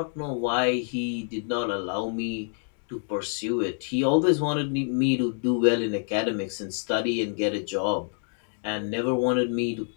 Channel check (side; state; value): right; silent; 56 dB below the other